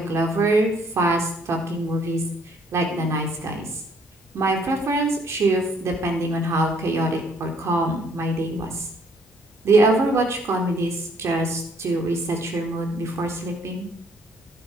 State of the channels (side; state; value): both; normal; correlation 0.64